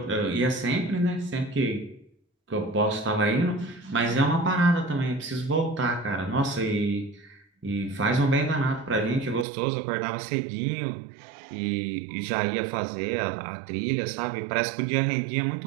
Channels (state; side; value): drops out; left; at 9.5 s